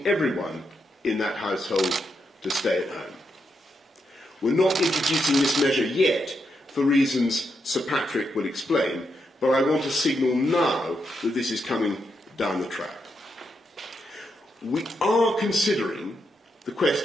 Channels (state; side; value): normal; both; correlation 0.82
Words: everyone in that household to stay at home. We're not introducing this measure yet for reasons Sir Patrick will explain, but I want to signal now that this is coming down the track. We are considering the